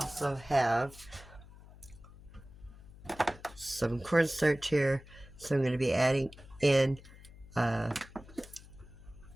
have some cornstarch here. So I'm going to be adding in 4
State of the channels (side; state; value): left; noise; hum, 20 dB below the sound